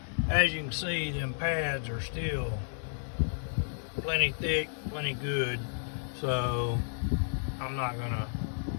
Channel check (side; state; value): right; silent; digital silence